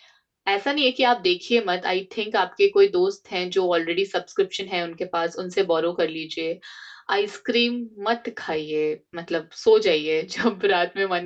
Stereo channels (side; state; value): both; identical; correlation 1.00